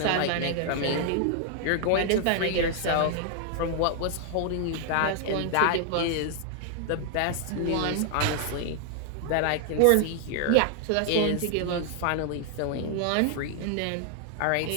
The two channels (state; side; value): different; both; correlation 0.00